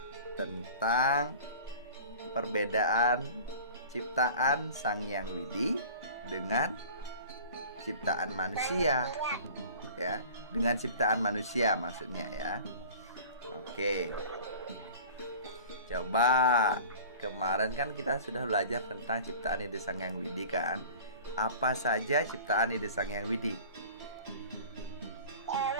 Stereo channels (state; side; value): inverted; both; correlation -0.42